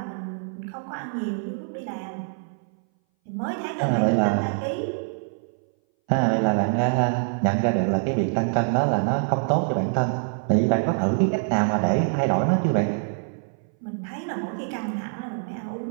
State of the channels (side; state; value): left; silent; 60 dB below the other